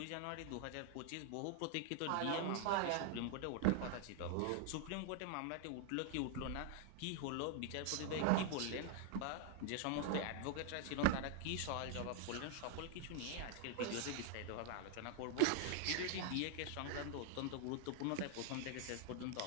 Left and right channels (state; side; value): different; both; correlation 0.00